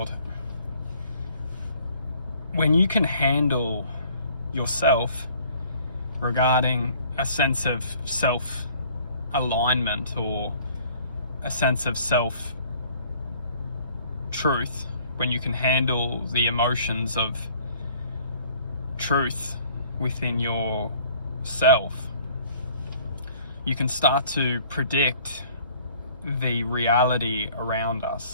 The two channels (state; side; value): inverted; both; correlation -0.55